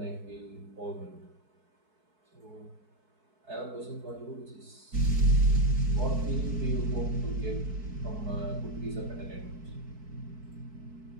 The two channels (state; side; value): late; left; 4.6 ms